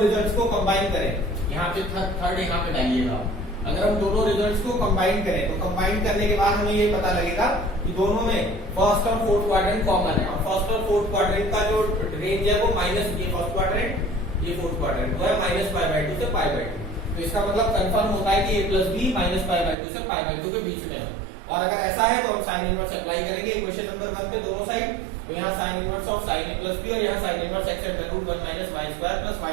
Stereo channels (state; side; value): drops out; left; at 19.8 s